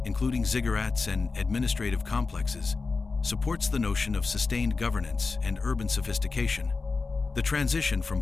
including ziggurats and administrative complexes, supports the notion of sustained governance and urban sophistication. The transition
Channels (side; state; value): right; quieter; 4.2 dB